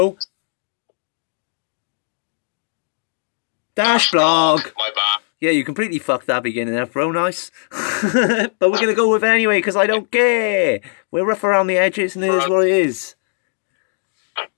Dash blog. My bad. Yeah, you completely fucked that beginning there, bro. Nice. But we're going to go with it anyway because I don't care. We're rough around the edges and it is what it is.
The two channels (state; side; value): silent; right; digital silence